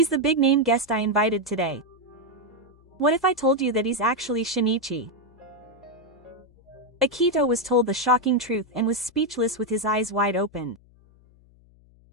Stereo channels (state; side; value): noise; left; hum, 28 dB below the sound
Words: the big-name guest I invited today. What if I told you that he's actually Shinichi? Akito was told the shocking truth and was speechless with his eyes wide open.